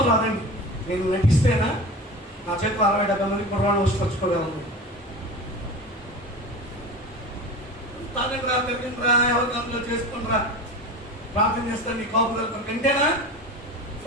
రాదండి. నేను నటిస్తేనా నా చేతిలో 60-70 మంది కుర్రాళ్ళు వచ్చుకోగలను. తాగండిరా, తిరగండిరా, ఎవరి కంట్లో చేసుకుంటారా, ప్రార్థన చేస్తాను నీ కాపుదల కంటేనా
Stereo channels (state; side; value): normal; both; correlation 0.31